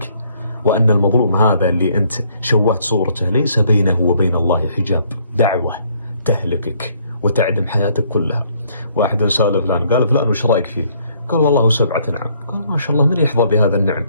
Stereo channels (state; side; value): inverted; both; correlation -0.65